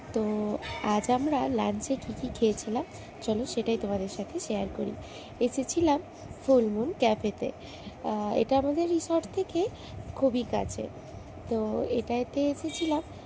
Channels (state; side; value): identical; both; correlation 1.00